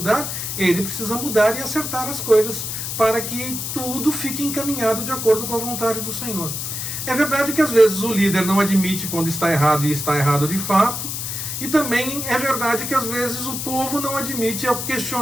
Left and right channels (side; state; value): left; noise; hiss, 4 dB below the sound